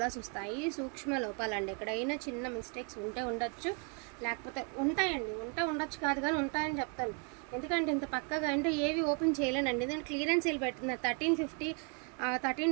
వస్తాయి. సూక్ష్మ లోపాలండి. ఎక్కడైనా చిన్న మిస్టేక్స్ ఉంటే ఉండొచ్చు, లేకపోతే ఉంటాయండి. ఉండొచ్చు కాదు కానీ ఉంటాయని చెప్తాను. ఎందుకంటే ఇంత పక్కగా అంటే ఏవి ఓపెన్ చేయలేనండి. దాని క్లియరెన్స్ సేల్ పెట్టిన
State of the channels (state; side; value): quieter; left; 36.2 dB